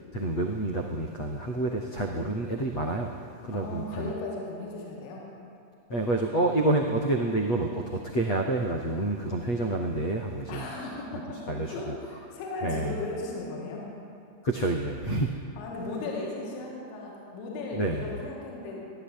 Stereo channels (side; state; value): right; late; 8.3 ms